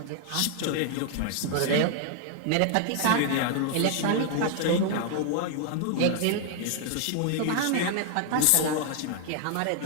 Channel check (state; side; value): different; both; correlation 0.00